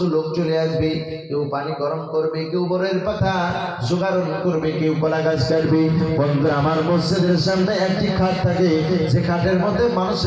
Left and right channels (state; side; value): identical; both; correlation 1.00